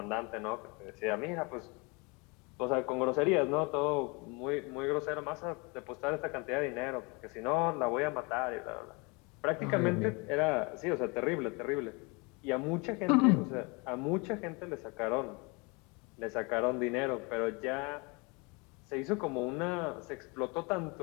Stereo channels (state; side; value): quieter; right; 29.1 dB